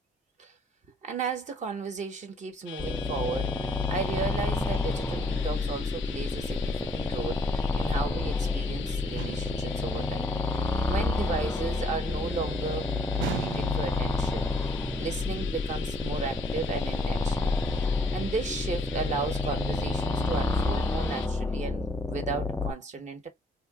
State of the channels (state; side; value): normal; both; correlation 0.64